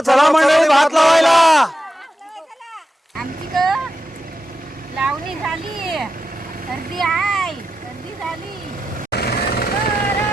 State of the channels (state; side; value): normal; both; correlation 0.89